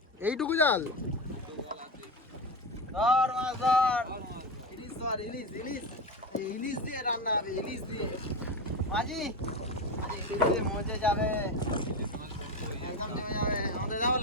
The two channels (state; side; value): normal; both; correlation 0.18